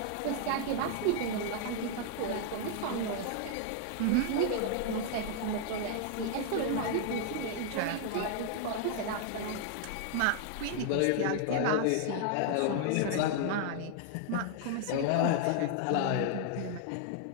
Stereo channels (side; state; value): both; different; correlation 0.00